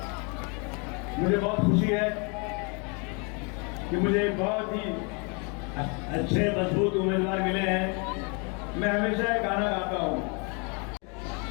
मुझे बहुत खुशी है कि मुझे बहुत ही अच्छे मजबूत उम्मीदवार मिले हैं। मैं हमेशा एक गाना गाता हूँ,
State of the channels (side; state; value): right; quieter; 33.8 dB